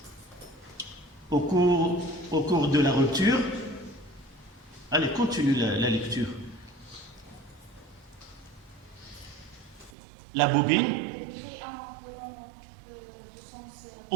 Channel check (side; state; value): left; drops out; at 9.9 s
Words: Au cours de la rupture. Allez, continue la lecture. La bobine